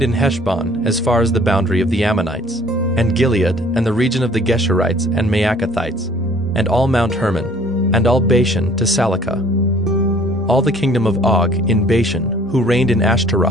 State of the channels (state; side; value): normal; both; correlation 0.55